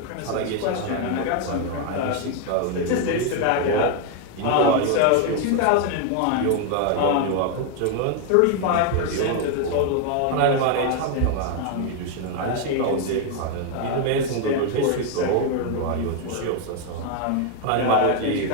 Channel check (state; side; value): different; both; correlation 0.00